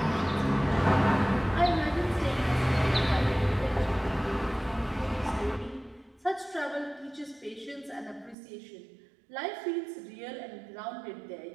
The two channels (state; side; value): drops out; left; at 8.3 s